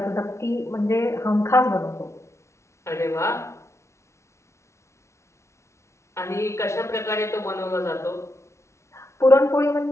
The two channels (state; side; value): late; right; 0.13 ms